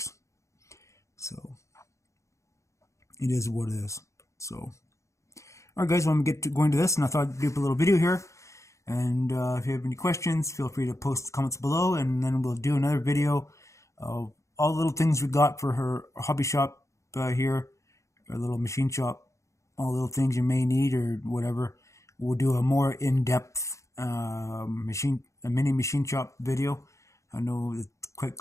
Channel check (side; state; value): right; late; 0.15 ms